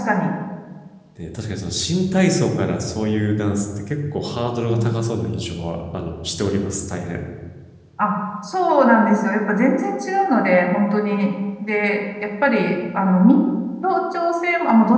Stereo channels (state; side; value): identical; both; correlation 1.00